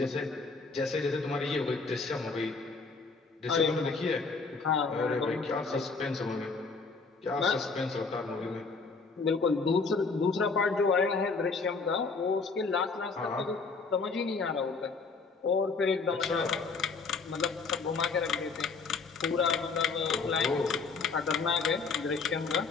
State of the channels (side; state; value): right; quieter; 4.5 dB